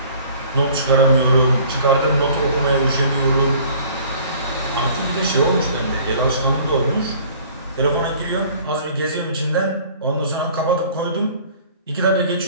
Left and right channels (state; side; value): inverted; both; correlation -0.51